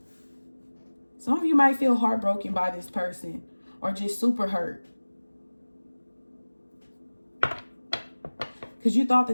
Some of you might feel heartbroken by this person, or just super hurt, because you thought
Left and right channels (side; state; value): both; inverted; correlation -1.00